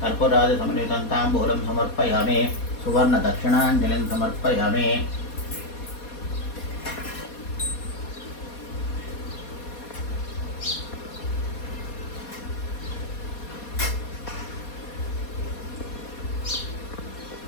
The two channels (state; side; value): late; right; 4.2 ms